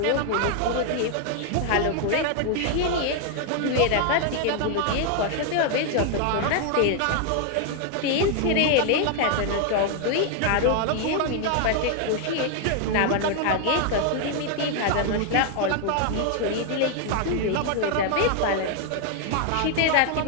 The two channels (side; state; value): both; different; correlation 0.00